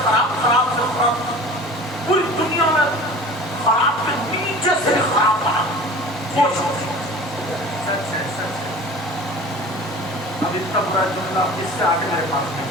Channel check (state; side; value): normal; both; correlation 0.40